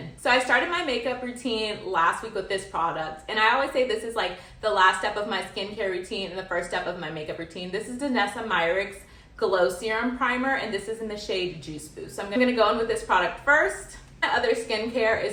So I started my makeup routine last week with this product, and I always say this is like the last step of my skincare routine and the first step of my makeup routine. This is Myrick's Glow Serum Primer, and this is in the shade Juice Boost. So I'm gonna go in with this product first. My other skincare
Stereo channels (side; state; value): both; identical; correlation 1.00